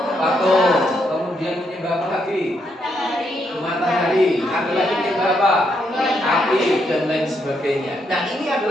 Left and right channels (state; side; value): normal; both; correlation 0.77